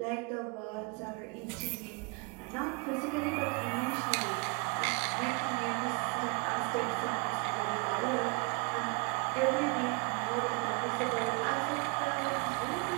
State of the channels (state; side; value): quieter; left; 31.0 dB